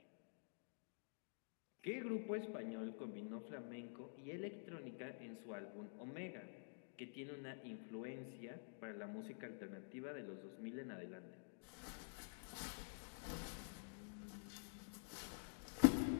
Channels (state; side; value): silent; right; digital silence